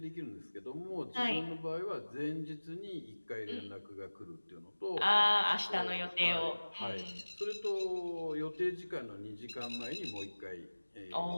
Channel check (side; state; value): both; inverted; correlation -1.00